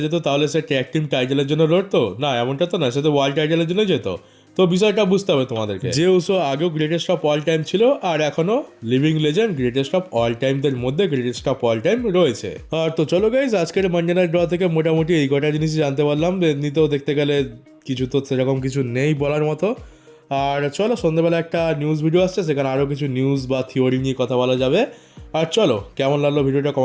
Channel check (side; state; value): both; identical; correlation 1.00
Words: যেত তাহলে সে ট্যাগ টিম টাইটেলের জন্য লড়তো, না এমনটা তো না, সে তো ওয়ার্ল্ড টাইটেলের জন্য যেত। তো বিষয়টা বুঝতে হবে তোমাদেরকে। জেউসো আগেও গ্রেটেস্ট অফ অল টাইম ছিল, আর এখনো living legend greatest of all টাইমদের মধ্যে গ্রেটেস্ট অফ অল টাইম রয়েছে। আর তো চলো গাইজ, আজকের মানডে নাইট ড্র থেকে মোটামুটি এই কটা জিনিসই জানতে পারলাম। এমনিতেও দেখতে গেলে কিছু তো সেরকম কিছু নেই বলার মতো। আর চলো, সন্ধ্যেবেলা একটা নিউজ ভিডিও আসছে, সেখানে আরও কিছু নিউজ বা থিওরি নিয়ে কথা বলা যাবে। আর চলো, কেমন লাগলো ভিডিওটা